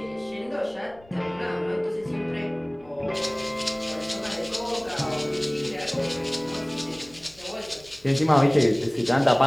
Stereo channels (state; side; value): noise; left; rumble, 27 dB below the sound